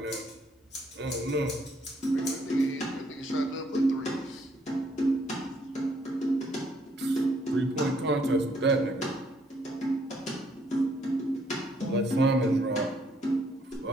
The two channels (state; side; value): normal; both; correlation 0.69